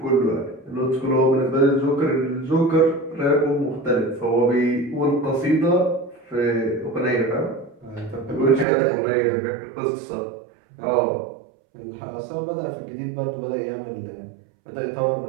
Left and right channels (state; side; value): drops out; left; at 8.7 s